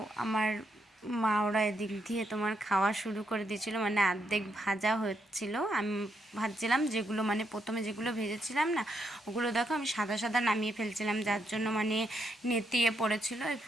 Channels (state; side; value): normal; both; correlation 0.79